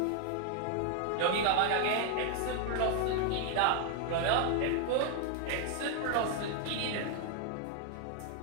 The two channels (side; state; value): both; different; correlation 0.00